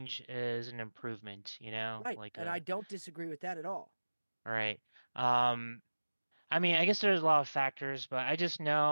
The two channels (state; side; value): inverted; both; correlation -1.00